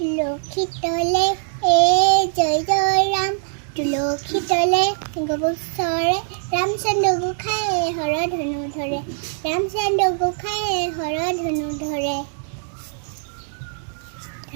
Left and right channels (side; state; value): left; silent; digital silence